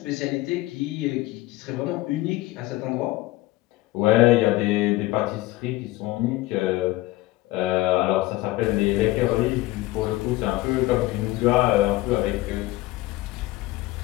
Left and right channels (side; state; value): right; quieter; 18.4 dB